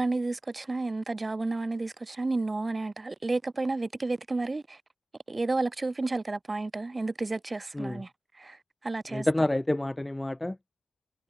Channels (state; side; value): normal; both; correlation 0.98